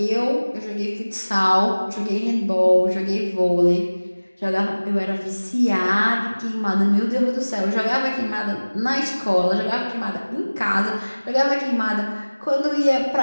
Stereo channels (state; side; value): inverted; both; correlation -1.00